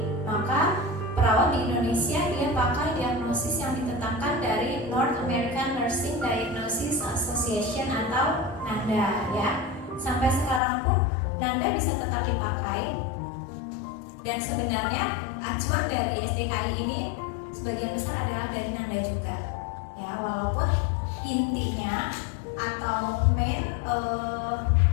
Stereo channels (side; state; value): right; drops out; at 10.6 s